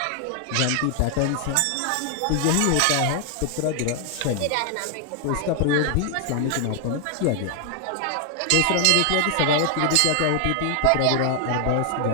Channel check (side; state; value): both; different; correlation 0.00